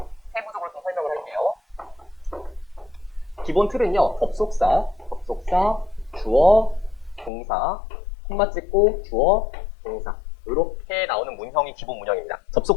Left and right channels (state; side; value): drops out; right; at 7.3 s